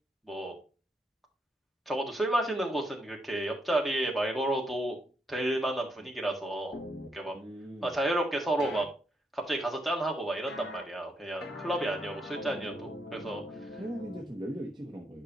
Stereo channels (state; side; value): normal; both; correlation 0.77